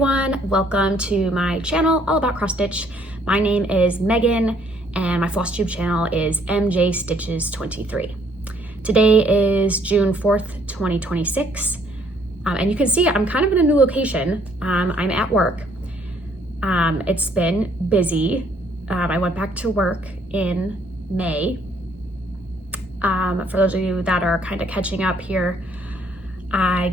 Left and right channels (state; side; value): normal; both; correlation 0.64